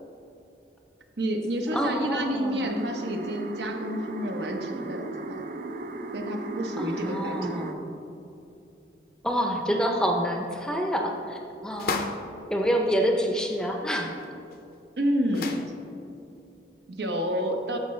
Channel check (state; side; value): normal; both; correlation 0.59